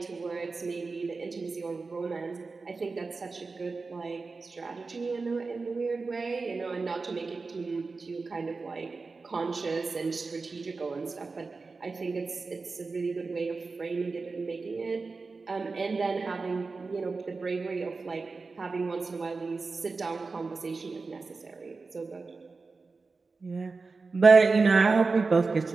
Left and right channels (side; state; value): left; quieter; 4.1 dB